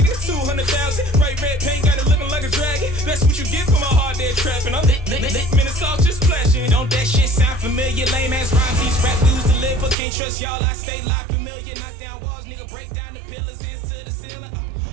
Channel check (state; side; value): drops out; left; at 10.0 s